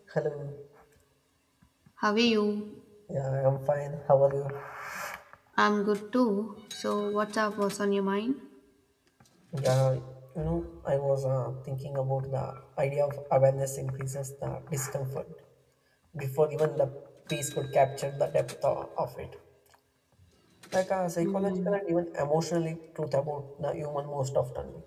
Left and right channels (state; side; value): identical; both; correlation 1.00